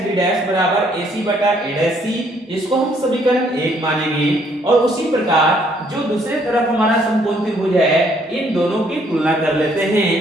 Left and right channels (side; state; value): both; normal; correlation 0.66